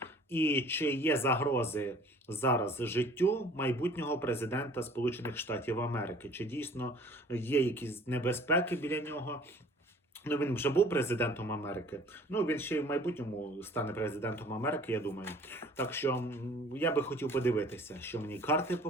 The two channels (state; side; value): normal; both; correlation 0.51